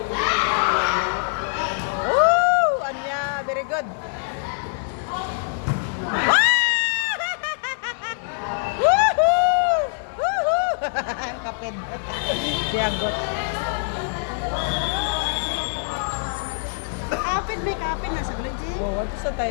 Anya, very good. Woohoo! Woohoo! Kapit. Siagot. Kapit, may kapit. Nasa Glodji. Oh, ato sa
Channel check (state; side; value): silent; right; digital silence